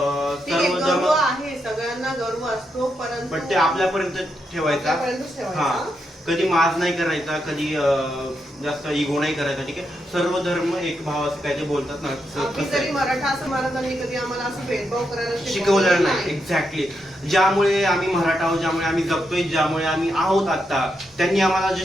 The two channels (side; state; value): both; normal; correlation 0.83